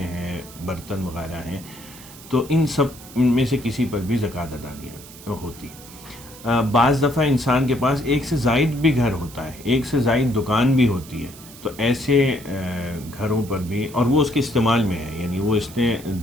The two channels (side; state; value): right; noise; hiss, 18 dB below the sound